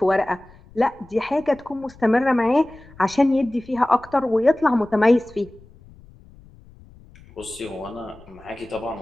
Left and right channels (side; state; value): left; noise; rumble, 24 dB below the sound